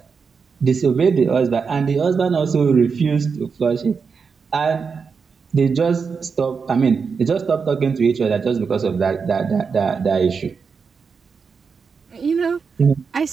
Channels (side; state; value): left; quieter; 5.5 dB